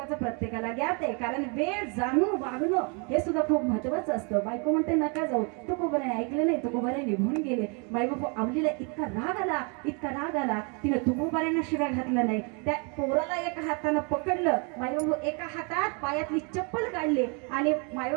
ज्ञात आहे. कारण वेळ जाणून वागणं हे सुद्धा खूप महत्वाचं असतं. बायको म्हणते नका जाऊ, तुकोबराने ऐकलं नाही, तुकोबराने निघून गेले. बायबापू आवलीला इतका राग आला तिने तुकोबरांना शिव्या घातलं नाही. त्या पोराला एका हातानं पकडलं. मायबापू एका हातात पायातली चप्पल काढली आणि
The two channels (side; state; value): left; quieter; 35.2 dB